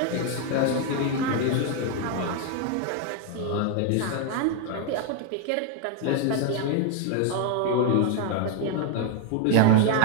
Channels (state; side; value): different; both; correlation 0.01